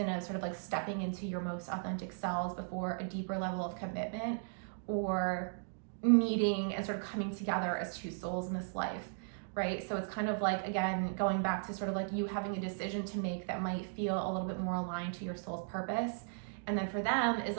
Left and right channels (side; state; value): left; silent; digital silence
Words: of sort of like stepping into your most authentic selves before a deeper level of commitment or meeting and sort of coming together as 2 souls in this life, right? So it's kind of like, again, going back to sort of like you having a decision to make that might feel a little bit more aligned to your soul's purpose. And then for them is